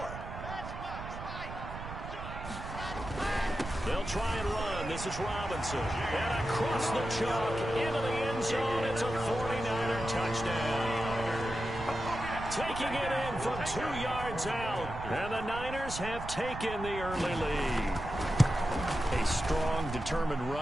They'll try and run. This is Robinson. And across the chalk into the end zone. It's a 49er touchdown. Taking it in from 2 yards out. And the Niners have taken the early lead. A strong, determined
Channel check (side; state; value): right; noise; rumble, 9 dB below the sound